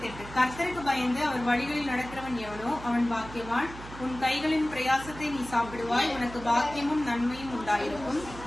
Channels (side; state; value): right; noise; hum, 14 dB below the sound